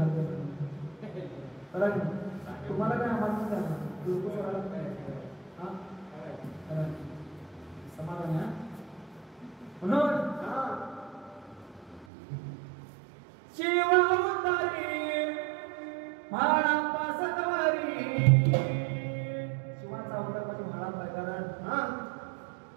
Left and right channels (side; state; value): left; drops out; at 12.1 s